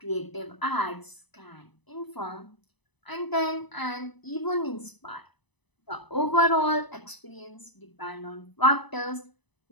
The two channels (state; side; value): late; right; 1.0 ms